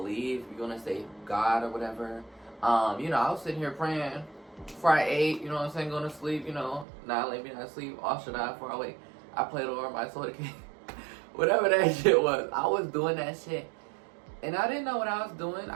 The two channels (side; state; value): left; drops out; at 6.9 s